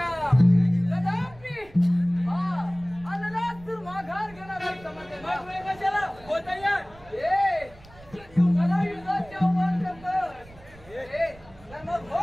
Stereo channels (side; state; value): right; noise; rumble, 23 dB below the sound